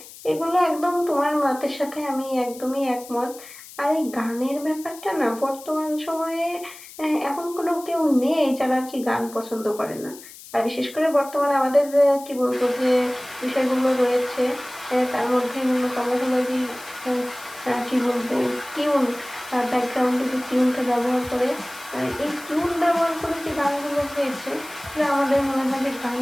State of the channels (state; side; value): noise; left; hiss, 17 dB below the sound